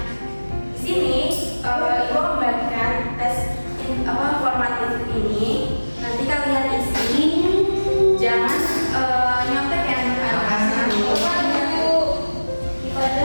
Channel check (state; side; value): inverted; both; correlation -1.00